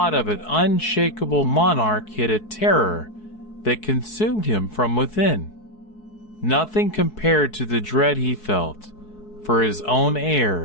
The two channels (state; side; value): late; right; 4.7 ms